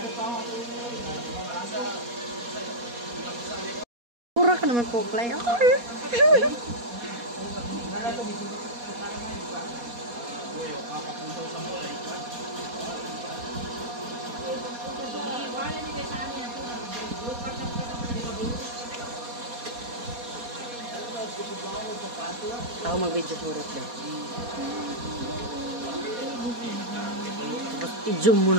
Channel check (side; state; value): left; late; 4.2 ms